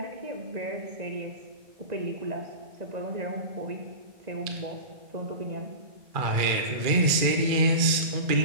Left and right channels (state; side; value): late; left; 2.3 ms